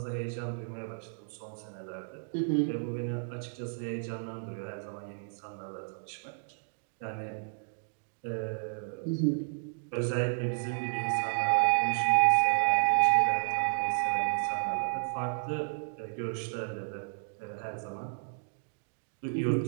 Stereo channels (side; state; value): left; silent; digital silence